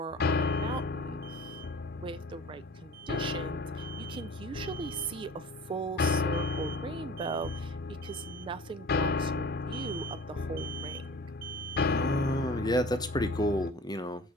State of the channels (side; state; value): both; normal; correlation 0.42